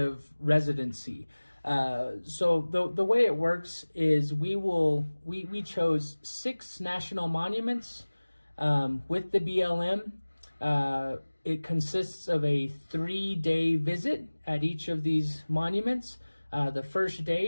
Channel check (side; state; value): both; inverted; correlation -1.00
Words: residency. So the way it works is we chose 6 national monuments with the BLM. It consists of a 3-day visit at each of these monuments. The first